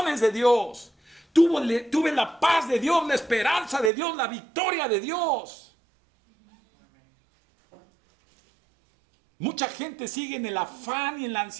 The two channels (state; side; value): drops out; left; at 3.9 s